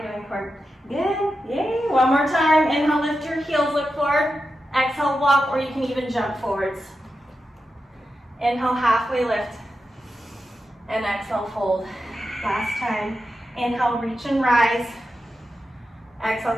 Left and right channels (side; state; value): both; normal; correlation 0.90